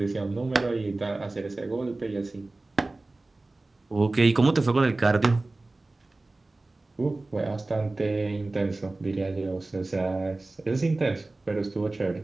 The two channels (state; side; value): quieter; left; 3.1 dB